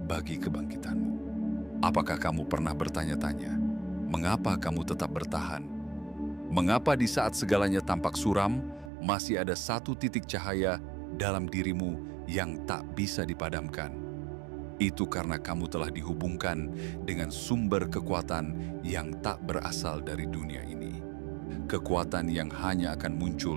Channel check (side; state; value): left; drops out; at 8.9 s